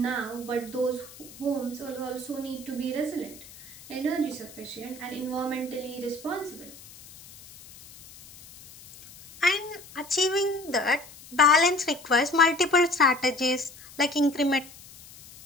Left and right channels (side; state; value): left; noise; hiss, 19 dB below the sound